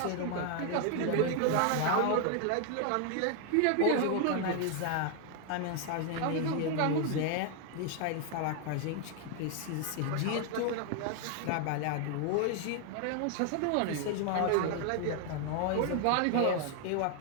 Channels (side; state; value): both; different; correlation 0.00